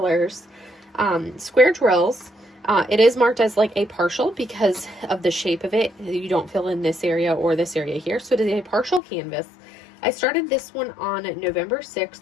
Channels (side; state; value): right; drops out; at 9.0 s